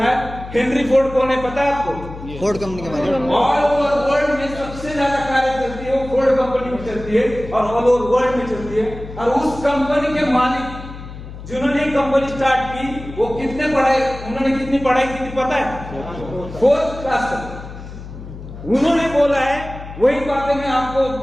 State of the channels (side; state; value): left; noise; hum, 13 dB below the sound